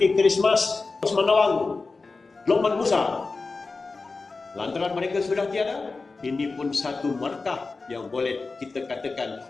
Christmas, Osman Nawang, Lokman Musa. Lantaran mereka sudah tiada, ini pun satu markah yang boleh kita katakan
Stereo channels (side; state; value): right; quieter; 3.9 dB